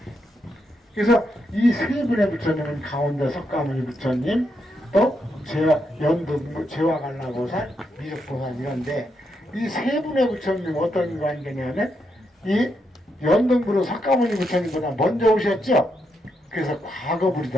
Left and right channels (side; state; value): both; normal; correlation 0.81